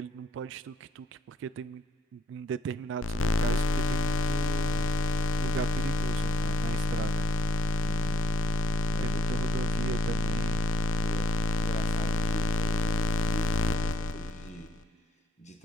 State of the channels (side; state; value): both; normal; correlation 0.72